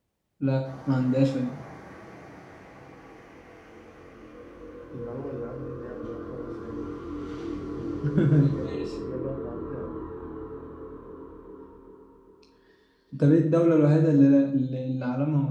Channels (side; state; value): both; identical; correlation 1.00